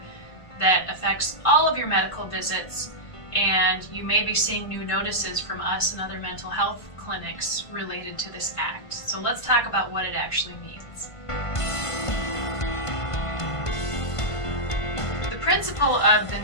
that affects all of your medical visits, and you may be seeing new notices from us and other mental health clinics related to this act. So let's talk about what it actually means. The principle of the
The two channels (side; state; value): right; late; 1.5 ms